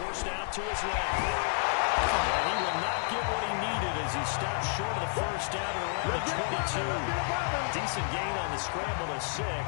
out to his left. And he will not get what he needed as he stopped short of the first down at around the 22. Decent gain on the scramble to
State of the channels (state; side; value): silent; right; 57 dB below the other